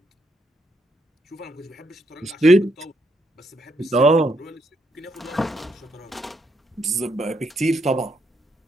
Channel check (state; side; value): normal; both; correlation 0.76